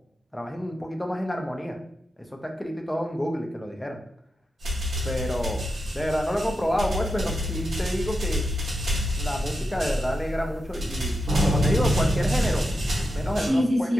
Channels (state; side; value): normal; both; correlation 0.88